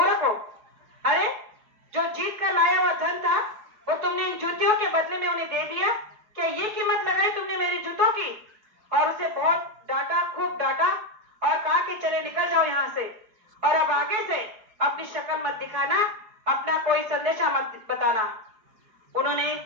हो, अरे जो जीत कर लाया हुआ धन था वो तुमने इन जूतियों के बदले में उन्हें दे दिया, क्या ये कीमत लगाई तुमने मेरी जूतों की। और उसे बहुत डांटा, खूब डांटा और कहा कि चले निकल जाओ यहाँ से और अब आगे से अपनी शक्ल मत दिखाना, अपना कोई संदेशा मत बताना। उन्होंने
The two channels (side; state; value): left; late; 4.6 ms